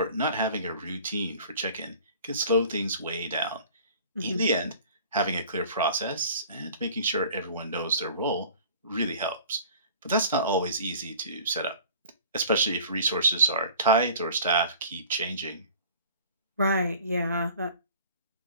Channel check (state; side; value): inverted; both; correlation -0.46